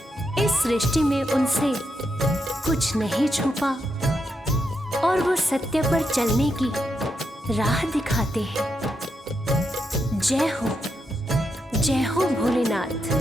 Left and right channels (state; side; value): normal; both; correlation 0.83